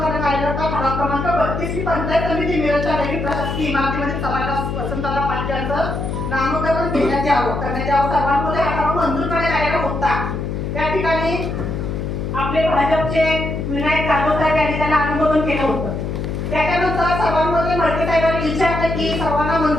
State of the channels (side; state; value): left; noise; hum, 3 dB below the sound